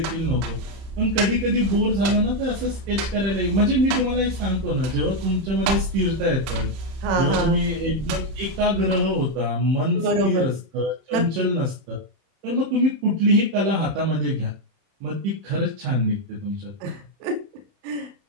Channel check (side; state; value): left; late; 31 ms